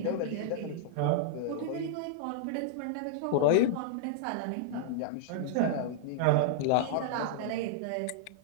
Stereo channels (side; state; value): both; different; correlation -0.01